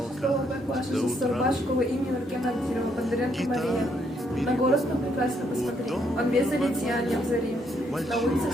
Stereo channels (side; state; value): both; normal; correlation 0.73